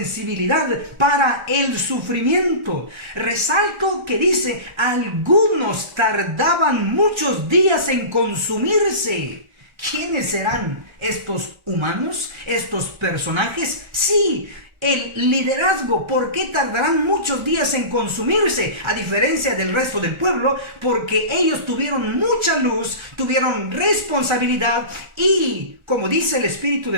para el sufrimiento. Resalto que dice, algunos tardaban muchos días en consumirse. ¿Quiénes serán estos humanos, estos personajes? Sí, el liderazgo. ¿Por qué tardarán muchos días en consumirse? A diferencia del resto del pueblo, porque ellos tuvieron mucha luz, tuvieron responsabilidad y, como dice el espíritu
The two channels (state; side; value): late; left; 1.3 ms